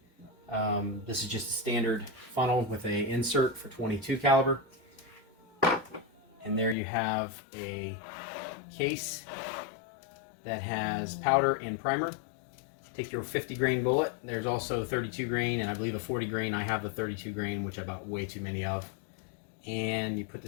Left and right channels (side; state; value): right; drops out; at 6.8 s